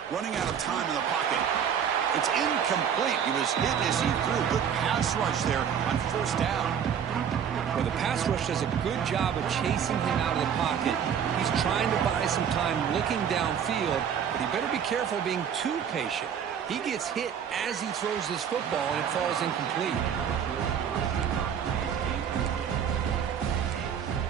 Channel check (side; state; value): left; quieter; 8.1 dB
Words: Running out of time in the pocket. It's incomplete. He was hit as he threw. Good pass rush there on 1st down. Well, the pass rush does a good job of chasing him out of the pocket. He's trying to buy some time looking downfield, but he better be careful being too patient. He gets hit as he throws this football, and it falls incomplete.